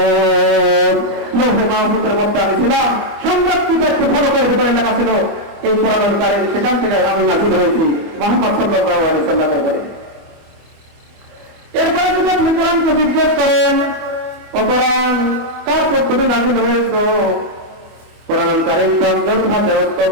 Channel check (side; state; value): left; late; 25 ms